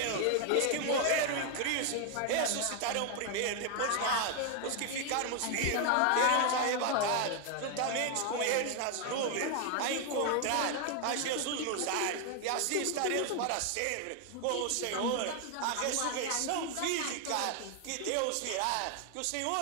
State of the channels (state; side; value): different; both; correlation 0.01